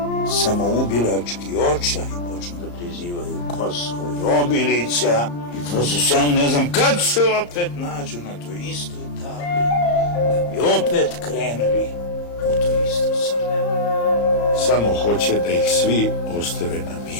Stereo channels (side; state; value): right; late; 34 ms